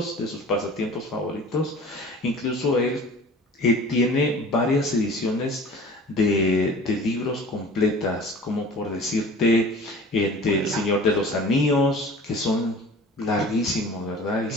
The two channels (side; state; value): both; normal; correlation 0.43